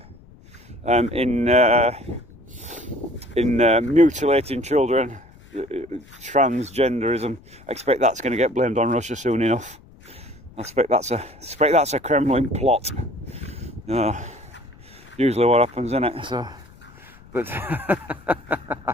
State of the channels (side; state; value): left; noise; rumble, 24 dB below the sound